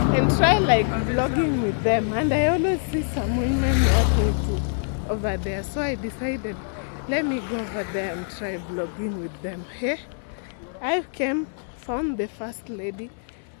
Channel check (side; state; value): right; silent; 58 dB below the other